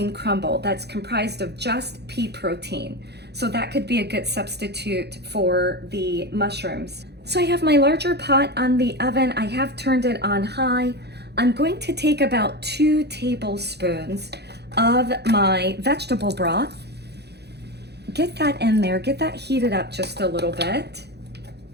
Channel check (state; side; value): late; left; 0.48 ms